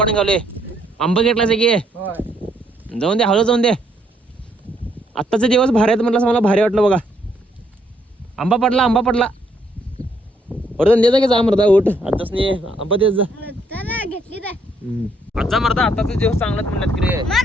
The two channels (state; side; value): normal; both; correlation 0.71